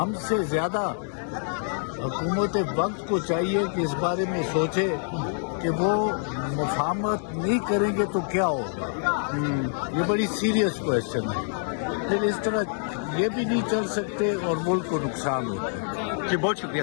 سے زیادہ حکومت وقت کو چاہیے کہ اس بارے میں سوچے کہ وہ مفاہمت نہیں کریں گے تو کیا ہوگا. یہ بڑی سیریس کویشچن ہے. پھر اس طرح یہ بھی نہیں چل سکتے اور ملک کو نقصان ہوتا ہے. جی بہت شکریہ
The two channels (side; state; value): right; silent; digital silence